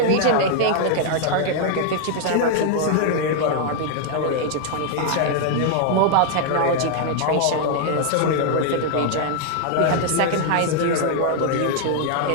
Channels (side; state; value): both; different; correlation 0.00